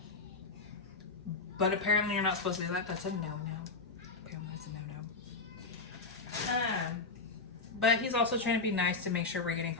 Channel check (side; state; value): right; quieter; 4.0 dB